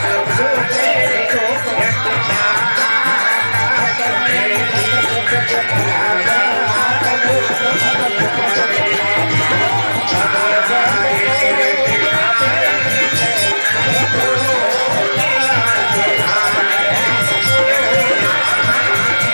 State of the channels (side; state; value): both; inverted; correlation -1.00